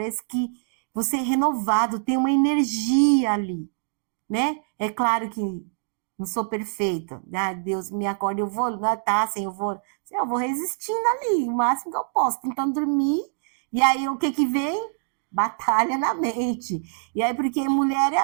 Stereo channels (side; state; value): left; silent; digital silence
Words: que você é renovado, tem uma energia ali, né? É claro que não sou perfeita. Deus me acorda, eu vou, eu vou resistindo ali, o máximo que eu posso, tentando dormir. E aí o que vem? Batalha na mente. E aí porque mulher é